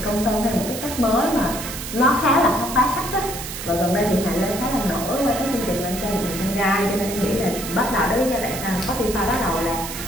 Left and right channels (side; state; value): right; noise; hiss, 8 dB below the sound